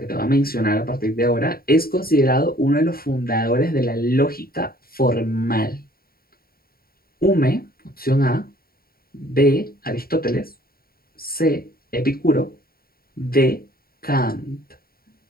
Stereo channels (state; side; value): late; right; 0.43 ms